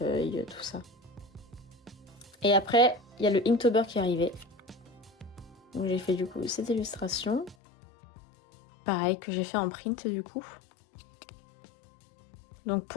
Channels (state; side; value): drops out; right; at 7.6 s